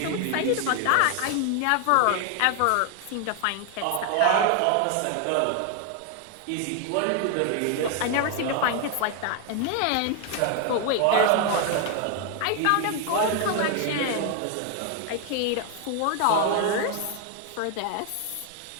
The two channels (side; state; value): both; different; correlation 0.01